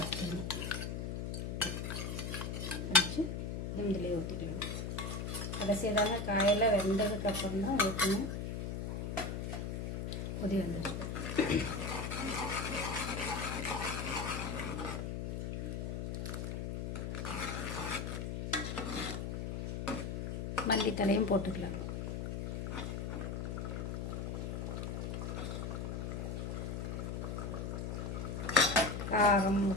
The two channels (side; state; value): left; noise; hum, 3 dB below the sound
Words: கரைச்சி இதிலே ஊற்றிக்கலாம். கடைசியதான காயெல்லாம் வெந்ததுக்கப்புறம் தான் ஊற்றணும். கொதி வந்துடுச்சு. மல்லித்தலையும் போட்டுக்கலாம். காரம்